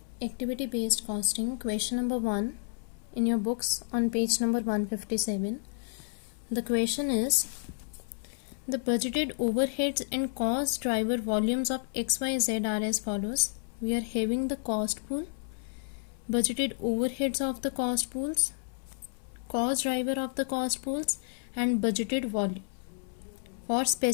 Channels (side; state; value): right; silent; 57 dB below the other